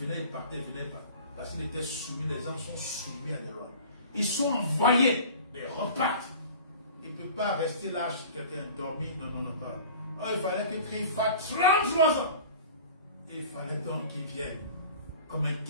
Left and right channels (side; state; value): both; inverted; correlation -0.42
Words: il partait, il venait, il partait. Parce qu'il était soumis, les gens sont soumis à des lois. Ils sont envoyés, mais ils repartent. Il ne peut pas rester là chez quelqu'un dormi. Non, non, non, pas. Oh, il fallait que Christ fasse 33 ans. Et il fallait donc qu'il vienne comme un